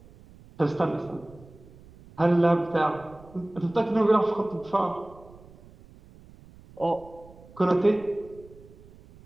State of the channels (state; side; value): noise; right; rumble, 22 dB below the sound